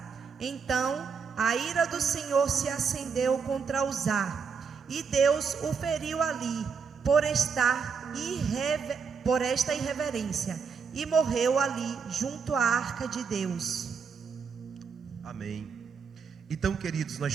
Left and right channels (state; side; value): quieter; left; 5.8 dB